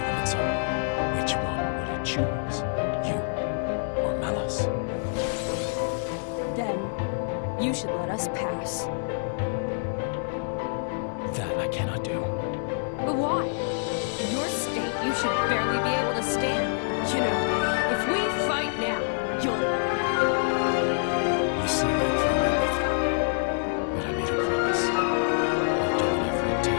of its own, which one would it choose? You or Malos? Then, you should let us pass. That I cannot do. But why? In your state, you should barely be able to stand. You know, if we fight now, you'll... You see right through my Mithra. But I made a promise. I'll do whatever it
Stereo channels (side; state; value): right; silent; digital silence